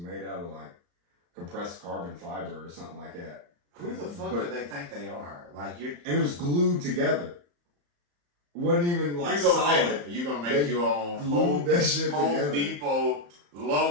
out of like compressed carbon fiber or something like that. Who the fuck But- do they think they are? Like you're And it was glued together. Wasn't even like you gonna solid. make, you gonna make They your own glued that shit Home together. Depot,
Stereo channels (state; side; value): late; left; 35 ms